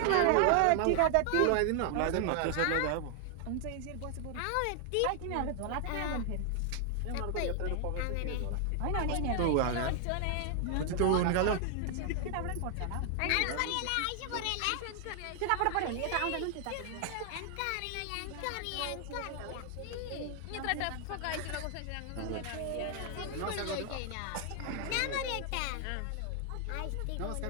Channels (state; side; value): different; both; correlation 0.00